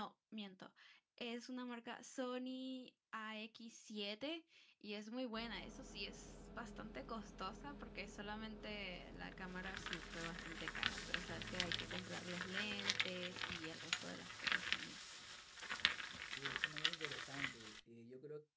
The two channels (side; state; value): both; identical; correlation 1.00